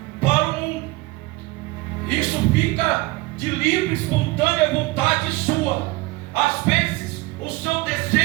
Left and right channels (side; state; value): left; quieter; 21.8 dB